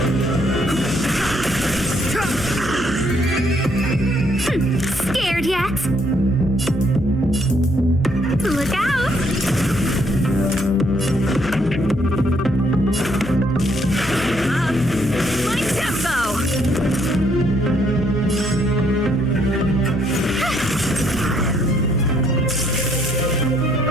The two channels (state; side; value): noise; left; hum, 10 dB below the sound